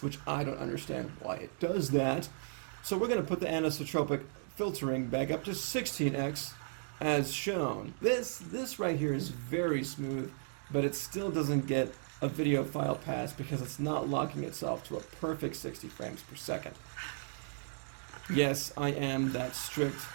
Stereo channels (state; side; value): silent; left; digital silence